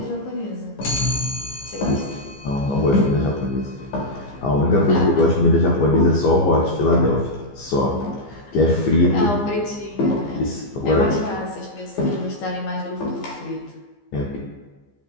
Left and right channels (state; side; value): late; right; 15 ms